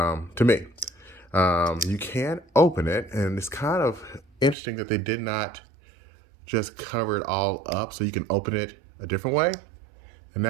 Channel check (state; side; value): drops out; left; at 4.5 s